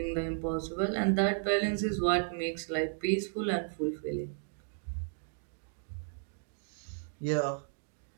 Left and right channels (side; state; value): left; silent; digital silence